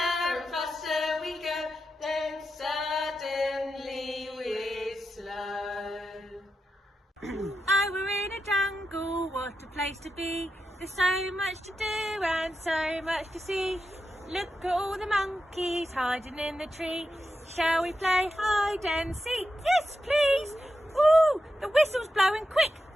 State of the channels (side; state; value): both; normal; correlation 0.89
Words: and faster we go, then suddenly we're slow. Oh, we're in a jungle, what a place to be. There's so much to do and so much to see. Look at all the monkeys hiding in the tree. Shall we play hide and seek? Yes, please. Ooh, the whistle's blowing quick.